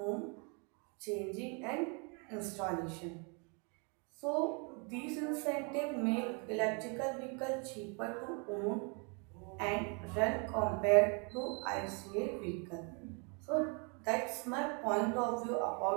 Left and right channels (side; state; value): left; quieter; 35.1 dB